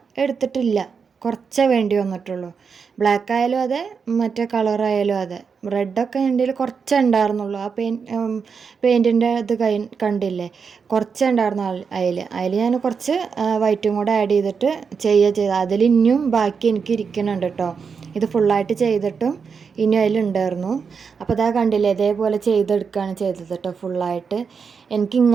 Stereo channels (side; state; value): left; quieter; 5.8 dB